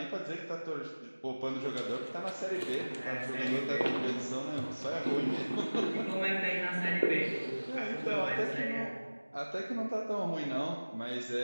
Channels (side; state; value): both; inverted; correlation -1.00